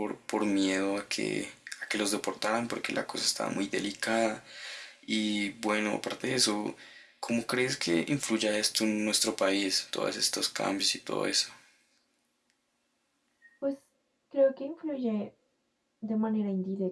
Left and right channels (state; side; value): identical; both; correlation 1.00